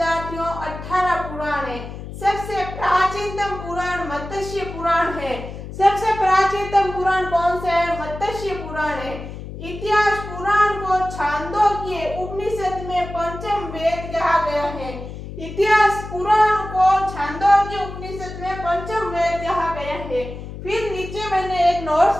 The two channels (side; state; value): left; noise; hum, 10 dB below the sound